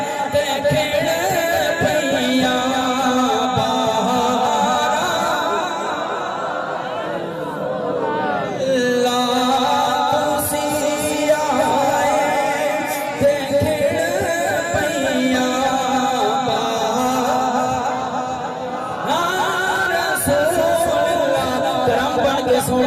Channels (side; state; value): both; identical; correlation 1.00